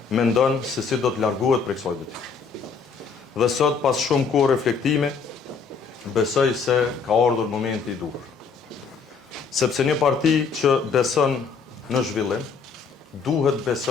mendon se si do të largohet prej kësaj detyre. Dhe sot, pas shumë kohë reflektimi, besoj se ka ardhur momenti i duhur. Sepse një parti që beson në zhvillim, duhet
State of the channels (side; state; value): right; quieter; 5.5 dB